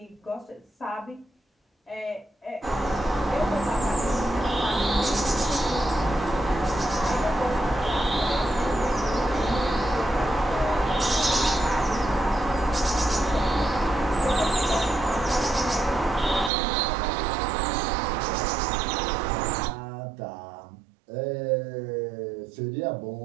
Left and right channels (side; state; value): left; drops out; at 16.5 s